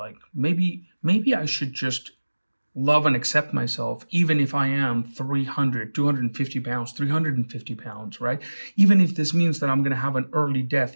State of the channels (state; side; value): inverted; both; correlation -1.00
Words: maybe I should just love and accept myself, even if I am 300, 250 pounds, 350 pounds, right? Even if this means that I'm going to have an early death,